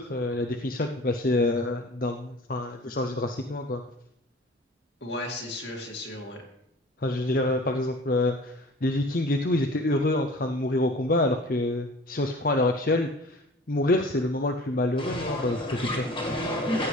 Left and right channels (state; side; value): normal; both; correlation 0.44